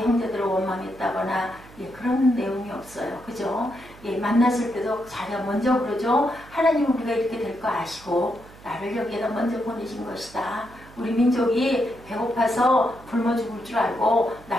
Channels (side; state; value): right; noise; hum, 21 dB below the sound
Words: 형제들을 원망했다거나 그런 내용이 없어요. 그죠? 만났을 때도 자기가 먼저 그러죠. 하나님은 우리가 이렇게 될 거 아시고 나를 여기에다 먼저 보내신 것이다. 우리 민족이 배고파서 굶어 죽을 줄 알고